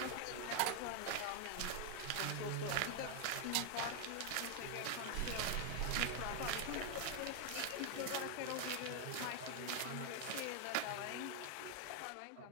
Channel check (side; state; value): both; different; correlation 0.01